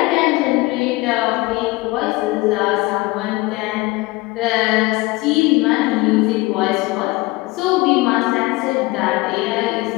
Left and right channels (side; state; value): right; quieter; 21.7 dB